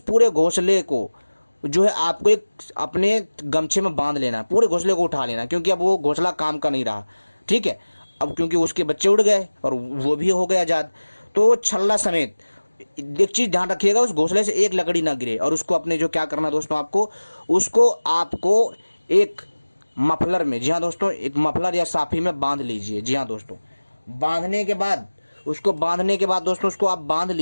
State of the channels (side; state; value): both; inverted; correlation -1.00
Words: पूरे घोंसले को जो है आपको एक अपने गमछे में बांध लेना है, पूरे घोंसले को उठा लेना, क्योंकि अब वो घोंसला काम का नहीं रहा, ठीक है। अब क्योंकि उसके बच्चे उड़ गए और वो भी हो गए आजाद, तो छल्ला समेत एक चीज ध्यान रखिएगा, उस घोंसले से एक लकड़ी ना गिरे। और उसको अपने जो क्या करना दोस्तों, आपको एक मफलर में, जी हाँ दोस्तों, एक मफलर या साफी में बांध लीजिए। जी हाँ दोस्तों, बांधने के बाद दोस्तों उसको आप बांध